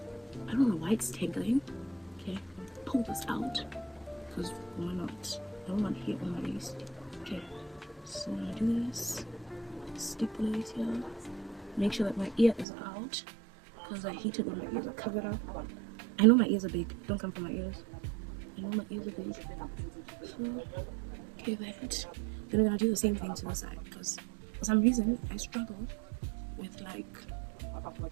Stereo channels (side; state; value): left; drops out; at 12.7 s